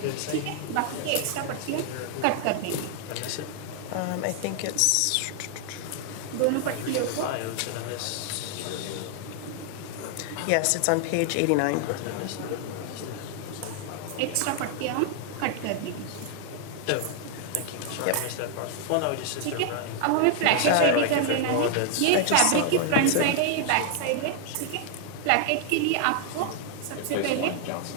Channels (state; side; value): different; both; correlation 0.00